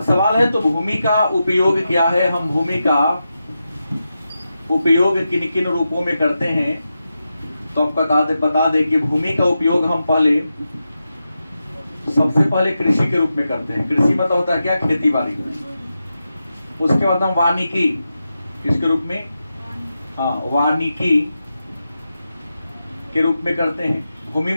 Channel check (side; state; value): both; inverted; correlation -0.89